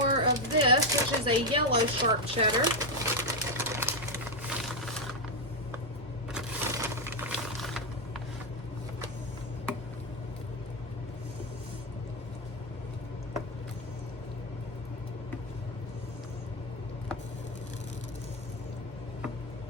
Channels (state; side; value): normal; both; correlation 0.06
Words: of this, which is a yellow sharp cheddar.